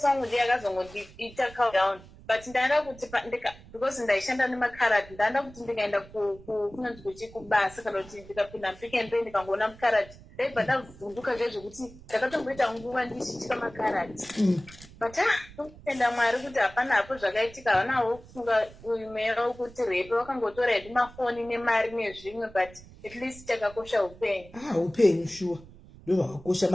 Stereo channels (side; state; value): right; noise; rumble, 20 dB below the sound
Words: wangu ndiye akazongondiita countdown but ndaenda kuti because ndaishanda nemakaradi ndaenda kuti ndikaenda kunonzi kuchi kubasa kana kuti ndikapinda mupick and pay ndikangoona mukaradi ndaibva ndavhunduka zvezvekuti ndakatomboita nguva ndishitika makaradi but tokutenda Mwari kuti hapana hapo zvakaitika havanawo kufunga umewo kuti repe vakangotora hedu mafoni nemari nezvimwe but at least takakosha upenyu upenyu shuwa ndo vakakosha